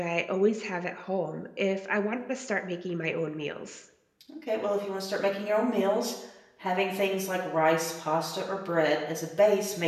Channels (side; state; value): both; identical; correlation 1.00